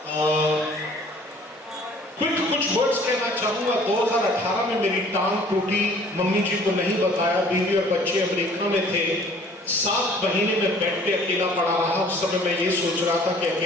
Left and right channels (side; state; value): both; normal; correlation 0.53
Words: कुछ वर्ड्स कहना चाहूंगा। 2018 में मेरी टांग टूटी, मम्मी जी को नहीं बताया, बीवी और बच्चे अमेरिका में थे। 7 महीने में बेड पे अकेला पड़ा रहा। उस समय मैं ये सोच रहा था कि